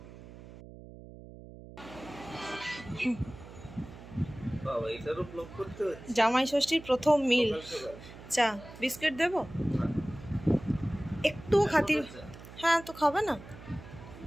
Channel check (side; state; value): right; noise; hum, 16 dB below the sound